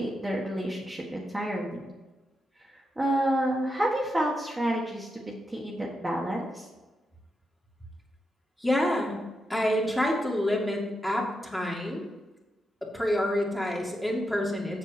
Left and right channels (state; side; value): normal; both; correlation 0.86